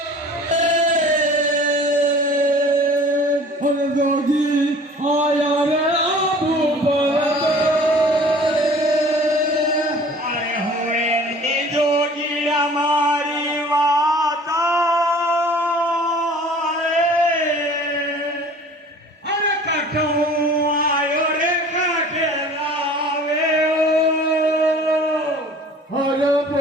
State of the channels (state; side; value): normal; both; correlation 0.47